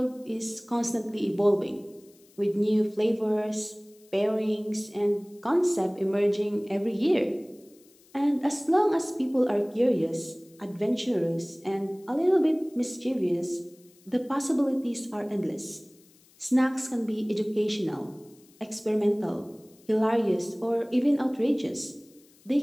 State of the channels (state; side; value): noise; left; hiss, 29 dB below the sound